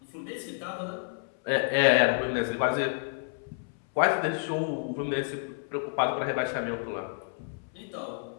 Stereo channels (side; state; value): right; silent; 58 dB below the other